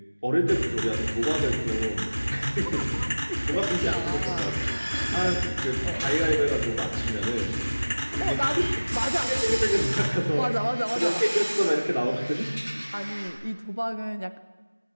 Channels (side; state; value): both; inverted; correlation -1.00